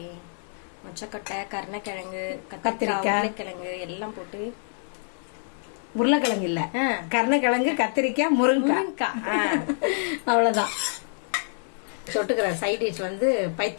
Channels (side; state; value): right; silent; 59 dB below the other